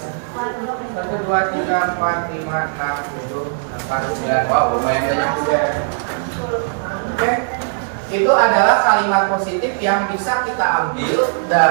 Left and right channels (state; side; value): silent; left; digital silence